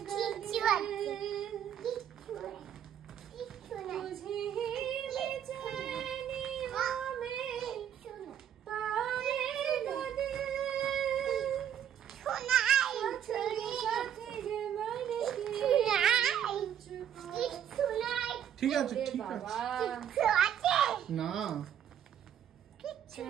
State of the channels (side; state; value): left; quieter; 9.6 dB